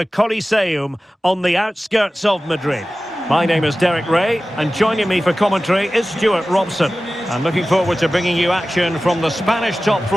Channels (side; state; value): both; normal; correlation 0.96